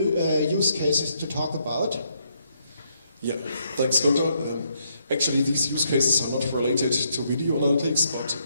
use cases to talk about. Yeah, thanks, Gunther. Actually, these use cases are not related to video analytics, but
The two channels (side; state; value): both; inverted; correlation -0.75